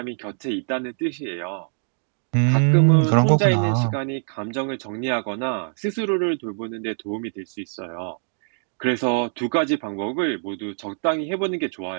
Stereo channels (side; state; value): left; silent; digital silence